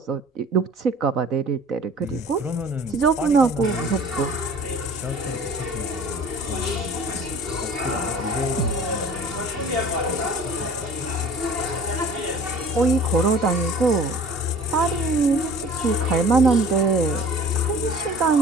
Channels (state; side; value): normal; both; correlation 0.46